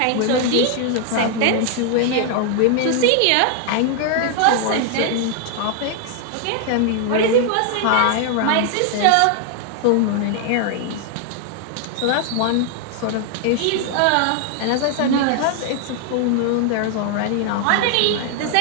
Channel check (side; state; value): both; different; correlation 0.00